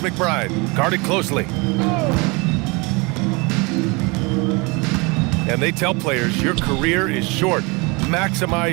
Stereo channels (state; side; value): quieter; left; 27.8 dB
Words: guarded closely. And they tell players your career is short.